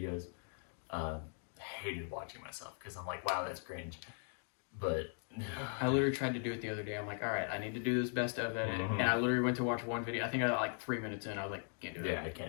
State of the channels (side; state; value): right; silent; 52 dB below the other